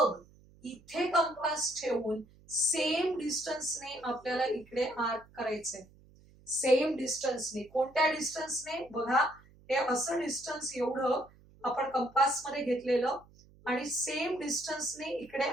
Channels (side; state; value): right; noise; hum, 26 dB below the sound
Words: इथे कंपास ठेवून सेम डिस्टन्सने आपल्याला इकडे आर्क करायचंय. सेम डिस्टन्सने. कोणत्या डिस्टन्सने, बघा, हे असं डिस्टन्स एवढं आपण कंपास मध्ये घेतलेलं आणि सेम डिस्टन्सने इकडे